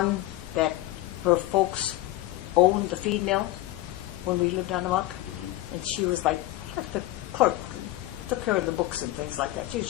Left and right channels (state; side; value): quieter; right; 16.8 dB